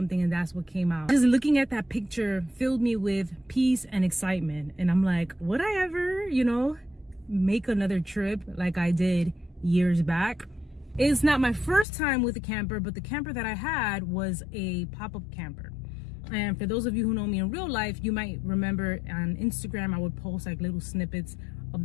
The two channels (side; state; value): right; drops out; at 11.9 s